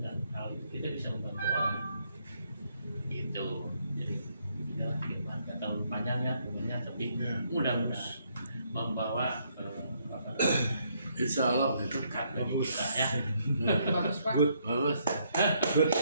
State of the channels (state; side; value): inverted; both; correlation -0.72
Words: hal itu kita bisa membantu orang. Gitu. Jadi inilah firman, gak terlalu panjang ya sebenarnya, tapi mudah-mudahan membawa apa namanya, Insya Allah itu berkat bagi kita ya. Bagus Pak. bagus.